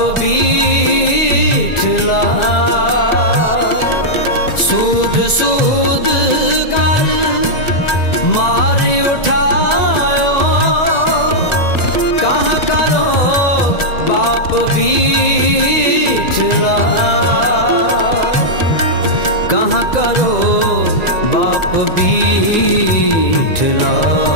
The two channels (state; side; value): late; right; 1.9 ms